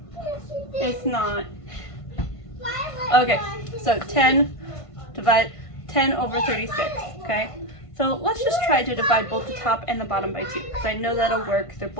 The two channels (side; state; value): right; late; 1.5 ms